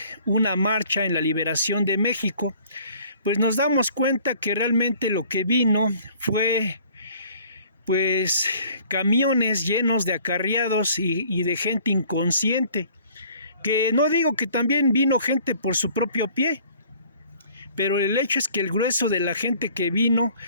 una marcha en la liberación de México, pues nos damos cuenta que realmente lo que vino fue pues camiones llenos de acarreados y de gente inconsciente, que no digo que también vino gente por su propio pie, pero el hecho es que el grueso de la gente que vino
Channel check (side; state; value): both; inverted; correlation -0.54